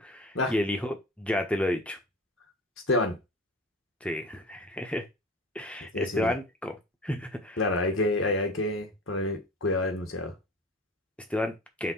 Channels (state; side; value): normal; both; correlation 0.36